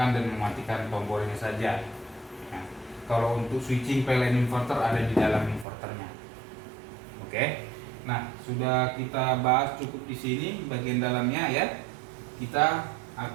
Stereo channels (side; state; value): left; drops out; at 5.7 s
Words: dan mematikan tombol ini saja. Nah, kalau untuk switching PLN inverter ada di dalam inverternya. Oke. Nah, sudah kita bahas cukup di sini bagian dalamnya ya. Kita